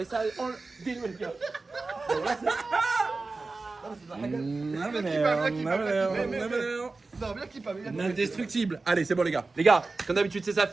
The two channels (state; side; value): quieter; left; 3.7 dB